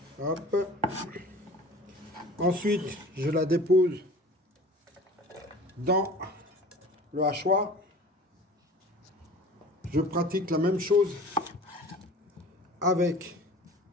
Hop. Ensuite, je la dépose dans le hachoir. Je pratique la même chose avec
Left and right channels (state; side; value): normal; both; correlation 0.42